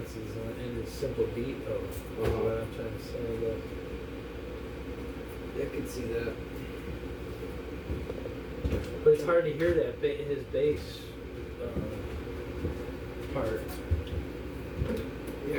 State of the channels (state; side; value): identical; both; correlation 1.00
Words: in his simple beat, though. Is what I'm trying to say. I can see that. But it's hard to hear that his bass part. Yeah,